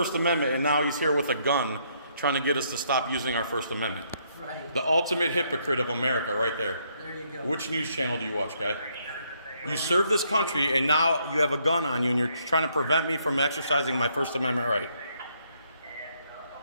Amendment, and now he's here with a gun trying to get us to stop using our First Amendment. Right. The ultimate hypocrite of America right there. There you go. Which news channel do you watch, guy? You serve this country, and now you have a gun on you, and you're trying to prevent me from exercising my First Amendment right.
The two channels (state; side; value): inverted; both; correlation -0.72